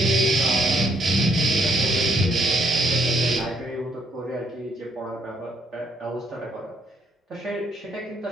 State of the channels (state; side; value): normal; both; correlation 0.71